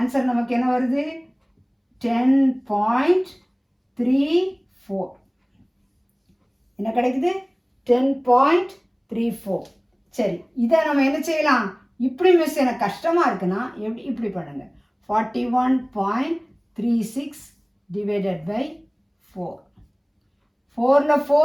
நமக்கு என்ன வருது 10.34 என்ன கிடைக்குது 10.34 சரி இதை நம்ம என்ன செய்யலாம் இப்படி மிஸ் எனக்கு கஷ்டமாக இருக்குன்னா எப்படி இப்படி பண்ணுங்க 41.36 டிவைடட் பை 4 4ல்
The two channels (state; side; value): identical; both; correlation 1.00